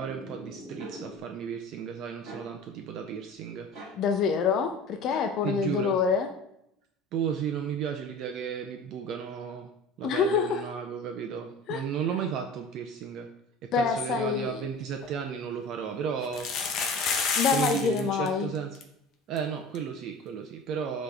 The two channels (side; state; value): both; normal; correlation 0.37